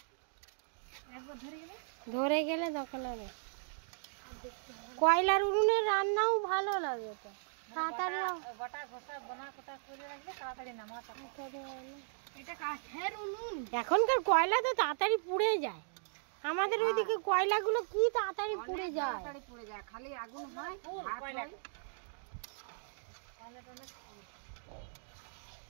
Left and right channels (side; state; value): left; silent; digital silence